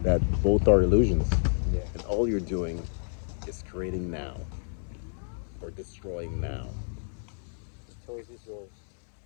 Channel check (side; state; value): right; silent; digital silence